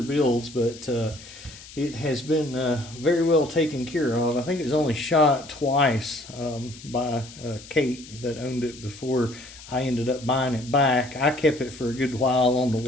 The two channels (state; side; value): noise; left; hiss, 18 dB below the sound